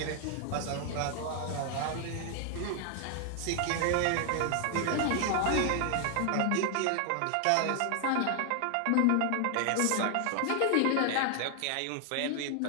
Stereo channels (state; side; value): different; both; correlation 0.00